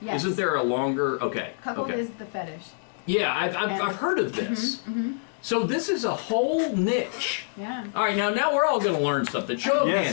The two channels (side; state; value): right; silent; digital silence